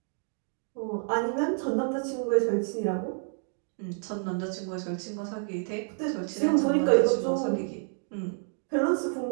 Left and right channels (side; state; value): left; silent; 58 dB below the other